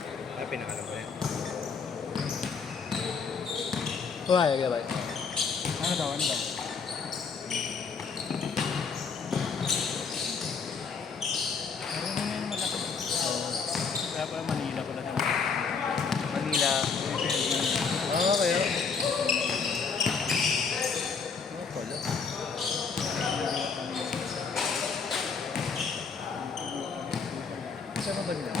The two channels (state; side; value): quieter; right; 5.4 dB